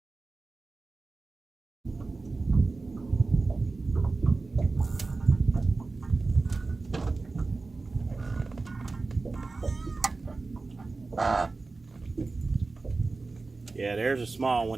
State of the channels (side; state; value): left; quieter; 3.7 dB